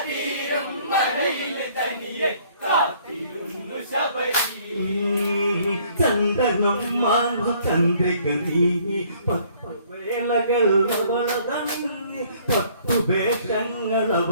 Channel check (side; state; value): both; inverted; correlation -0.61